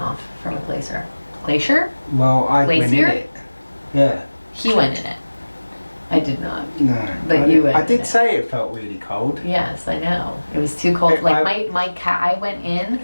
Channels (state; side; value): inverted; both; correlation -1.00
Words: from a glacier. Glacier? Well, I went in Glacier? it. Yeah. He went in it. I did not. No. But you went I in did it. say it felt really cold. Yes, I know. It was too cold. Like I went in